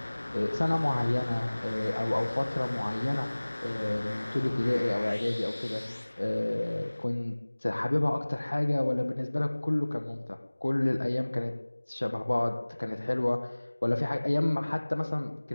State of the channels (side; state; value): both; inverted; correlation -1.00